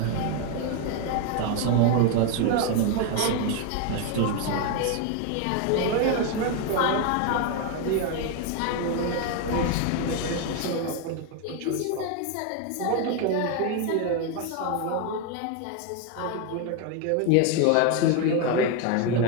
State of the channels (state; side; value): different; both; correlation 0.01